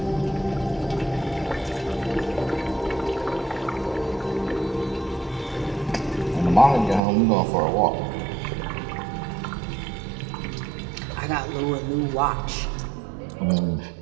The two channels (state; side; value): drops out; left; at 7.0 s